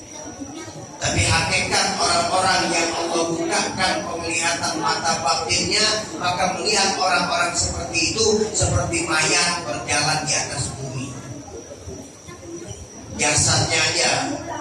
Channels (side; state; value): both; identical; correlation 1.00